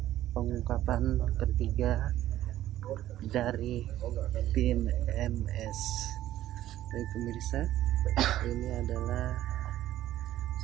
pengungkapan ketiga dari tim MS. Baik pemirsa, ini adalah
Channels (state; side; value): quieter; left; 13.5 dB